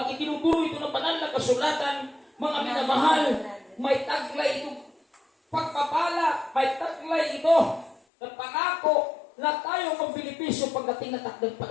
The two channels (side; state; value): right; drops out; at 8.0 s